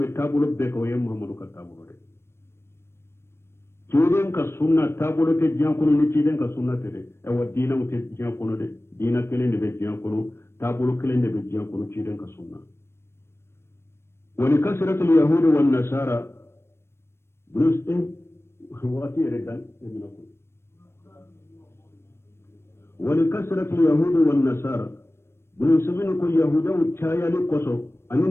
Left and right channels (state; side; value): late; right; 0.12 ms